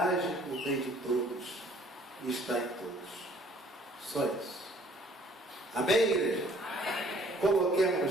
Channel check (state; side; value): normal; both; correlation 0.58